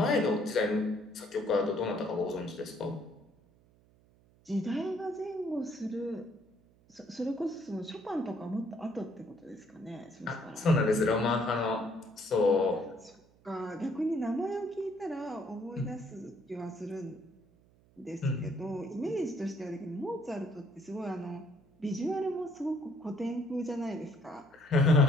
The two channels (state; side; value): noise; right; hum, 30 dB below the sound